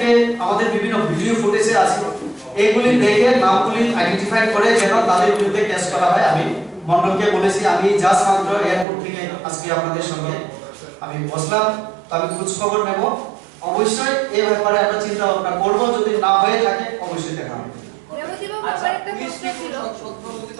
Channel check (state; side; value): drops out; left; at 8.8 s